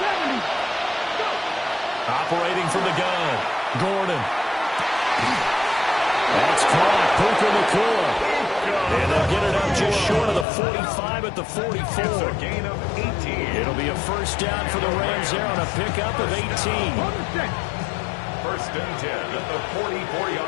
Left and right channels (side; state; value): right; drops out; at 10.5 s